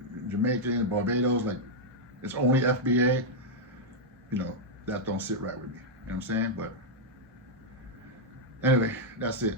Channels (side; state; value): both; normal; correlation -0.04